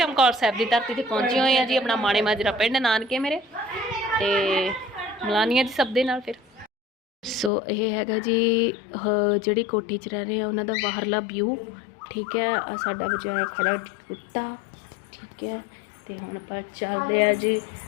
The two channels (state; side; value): drops out; right; at 7.5 s